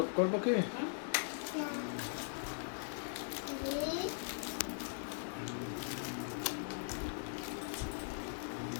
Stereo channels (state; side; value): silent; right; 51 dB below the other